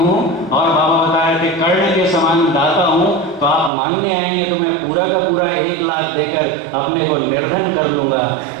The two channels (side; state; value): left; drops out; at 3.7 s